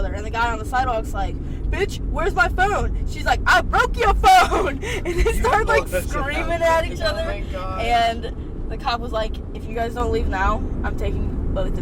and the guy on the sidewalk's like, bitch, where's my phone? She's like, I broke your phone. And they start like screaming at each other. Oh my God. And the cop was like, if you guys don't leave now, I'm taking both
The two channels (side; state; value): both; identical; correlation 1.00